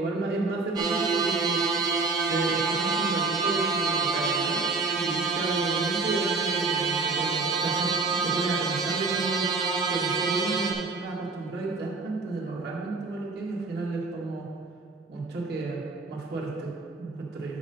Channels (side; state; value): left; quieter; 3.8 dB